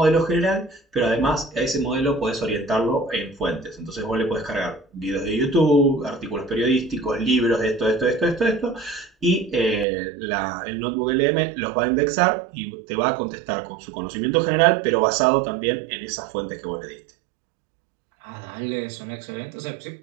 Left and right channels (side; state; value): left; drops out; at 9.9 s